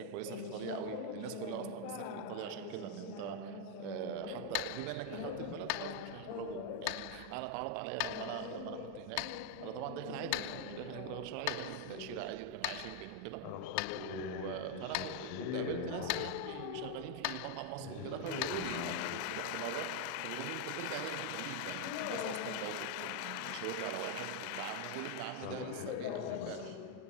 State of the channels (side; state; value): both; different; correlation 0.01